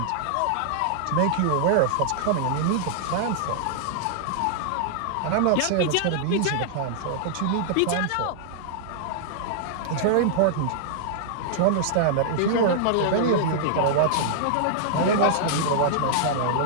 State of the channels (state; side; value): different; both; correlation -0.01